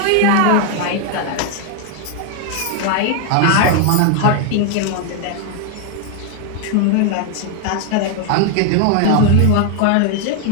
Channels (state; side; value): different; both; correlation 0.00